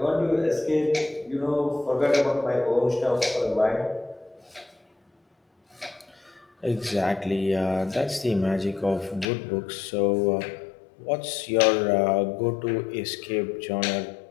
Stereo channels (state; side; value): drops out; right; at 9.2 s